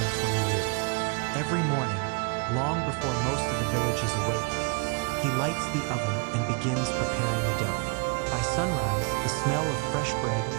20 years. Every morning, long before most of the village is awake, he lights the oven and begins preparing the dough. By sunrise, the smell of fresh bread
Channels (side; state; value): left; quieter; 34.7 dB